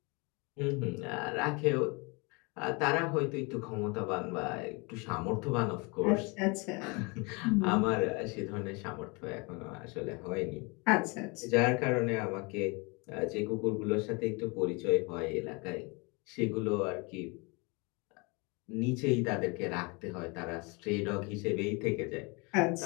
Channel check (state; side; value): quieter; right; 29.3 dB